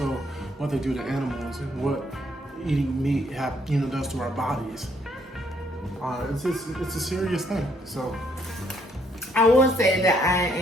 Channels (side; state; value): both; normal; correlation 0.69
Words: what they do to animals and what eating meat does to our bodies. It's a serious thing. So I will say that